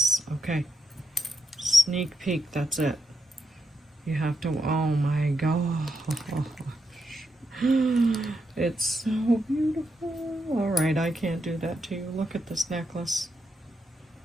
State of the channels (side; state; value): both; normal; correlation 0.83